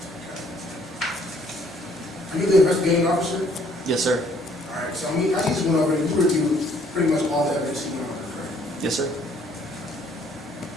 Are you the investigating officer? Yes, sir. All right, so I just went over and you reviewed pretty much all the evidence you went over, correct? Yes, sir.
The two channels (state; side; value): normal; both; correlation 0.63